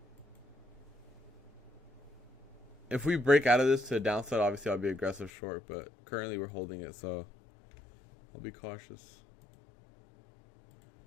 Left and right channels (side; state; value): right; drops out; at 5.3 s